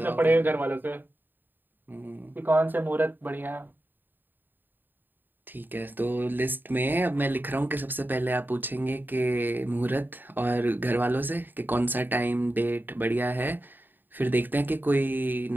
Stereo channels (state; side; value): late; left; 0.092 ms